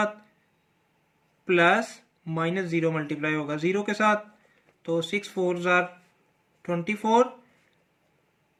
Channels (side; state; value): both; identical; correlation 1.00